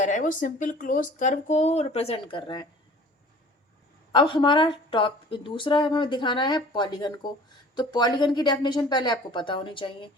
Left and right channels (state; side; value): normal; both; correlation 0.47